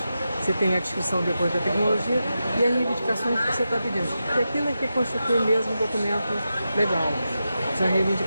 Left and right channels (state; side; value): inverted; both; correlation -0.90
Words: Você tem a descrição depois da tecnologia e as reivindicações que você está pedindo. E aquilo é que constitui mesmo um documento legal, são as